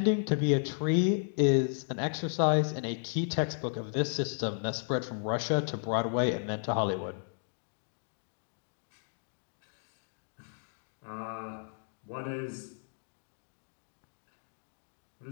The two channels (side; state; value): right; silent; digital silence